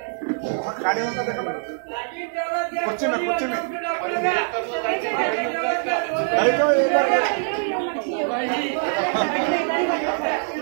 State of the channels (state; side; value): silent; left; 62 dB below the other